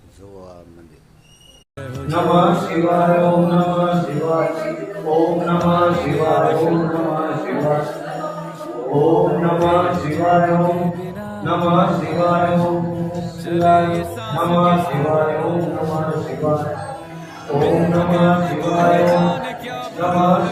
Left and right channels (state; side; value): identical; both; correlation 1.00